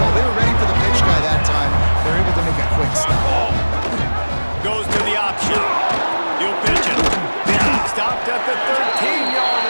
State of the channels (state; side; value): inverted; both; correlation -1.00